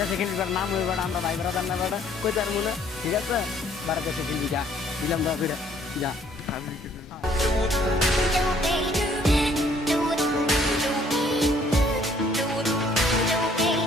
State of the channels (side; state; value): both; normal; correlation 0.62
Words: দেশে খেলবি বেটা, নাম হয়ে বেটা, আমরা ভাই বেড়াদার না বেটা, কই তার মনে, ঠিক আছে? বাইরের দেশে খেলবি, যা দিলাম দোয়া করে, যা। আমি কিছু